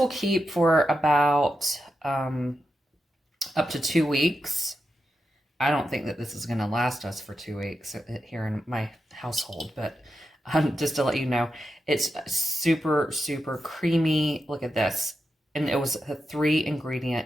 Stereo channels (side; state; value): both; normal; correlation 0.88